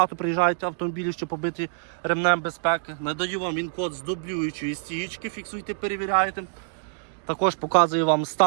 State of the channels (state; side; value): silent; left; digital silence